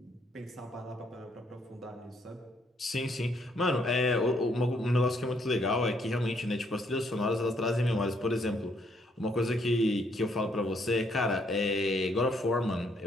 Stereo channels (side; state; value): both; normal; correlation 0.70